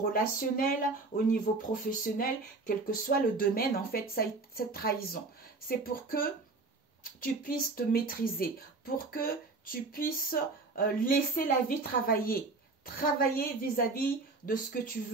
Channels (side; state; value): left; quieter; 3.6 dB